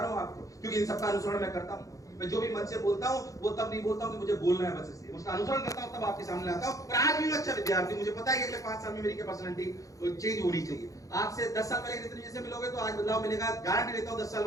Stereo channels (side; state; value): right; late; 0.16 ms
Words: हूं आपको, क्योंकि इन सबका अनुसरण मैं करता हूं। मैं जो भी मन से बोलता हूं वो तब नहीं बोलता हूं कि मुझे बोलना है, बस इसलिए उसका अनुसरण करता हूं, तब आपके सामने आता हूं। और आज भी मैं अच्छा विद्यार्थी, मुझे पता है कि अगले 5 साल में मेरी पर्सनालिटी चेंज होनी चाहिए। आज से 10 साल पहले जितने जैसे मिलोगे तो आज बदलाव मिलेगा, गारंटी देता हूं 10 साल